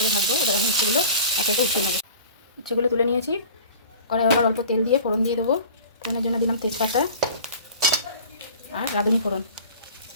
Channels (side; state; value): both; inverted; correlation -0.43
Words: ভাজবো। এবার আমি উচ্ছেগুলো এক একে উঠিয়ে নেবো। উচ্ছেগুলো তুলে নিয়েছি, কড়াই আবার অল্প তেল দিয়ে ফোড়ন দিয়ে দেবো। ফোড়নের জন্য দিলাম তেজপাতা আর রাঁধুনি ফোড়ন,